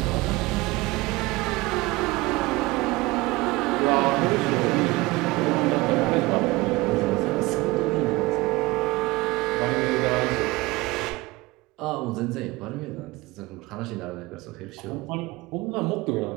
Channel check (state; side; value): quieter; left; 21.7 dB